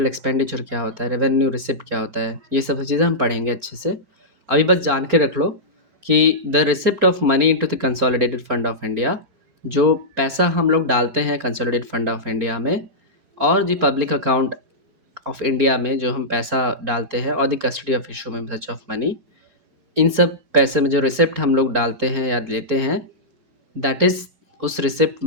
एक्सपेंडिचर क्या होता है, रेवेन्यू रिसिप्ट क्या होता है, ये सब चीज़ें हम पढ़ेंगे अच्छे से। अभी बस जान के रख लो कि the receipt of money into the consolidated fund of India, जो पैसा हम लोग डालते हैं कंसोलिडेटेड फंड ऑफ इंडिया में और the public account of India में जो हम पैसा डालते हैं और द कस्टडी ऑफ इशू में सच ऑफ मनी, इन सब पैसे में जो रिसिप्ट हम लोग डालते हैं या लेते हैं, दैट इज़, उस रिसिप्ट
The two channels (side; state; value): left; late; 4.4 ms